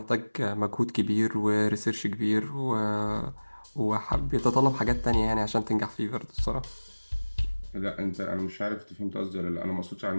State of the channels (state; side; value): inverted; both; correlation -1.00